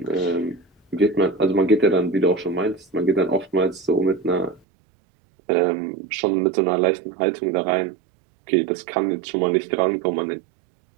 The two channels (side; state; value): left; drops out; at 4.6 s